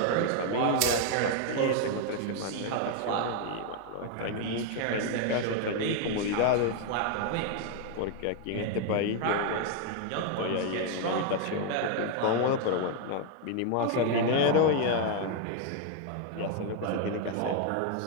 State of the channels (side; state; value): both; different; correlation 0.01